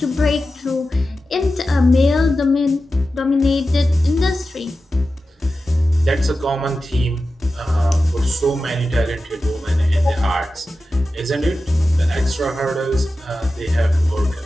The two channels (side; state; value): both; normal; correlation 0.93